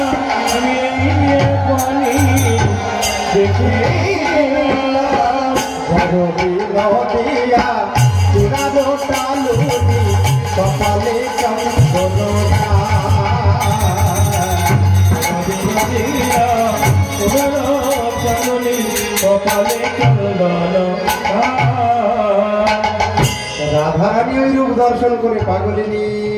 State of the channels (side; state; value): both; identical; correlation 1.00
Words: নদিয়া চূড়াবো টালুনি কপালে চন্দনা রাধারানী ওই রূপ দর্শন করে পাগলিনী